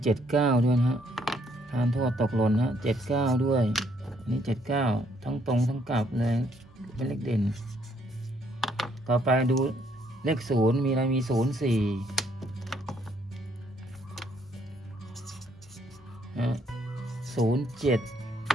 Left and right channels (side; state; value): both; normal; correlation 0.69